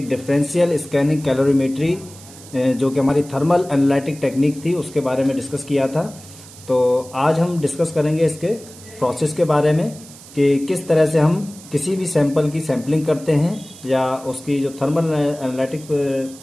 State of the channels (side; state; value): right; noise; hiss, 19 dB below the sound